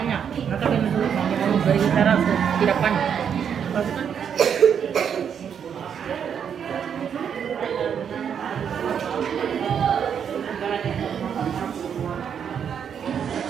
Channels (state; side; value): quieter; left; 7.9 dB